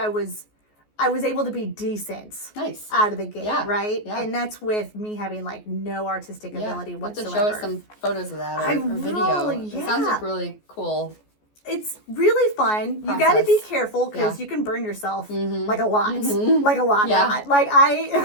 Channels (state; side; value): late; right; 14 ms